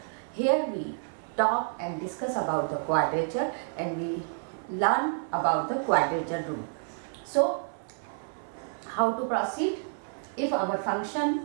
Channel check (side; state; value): left; silent; 56 dB below the other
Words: Here we talk and discuss about the quadrature and we learn about the quadrature rule. So how to proceed? If our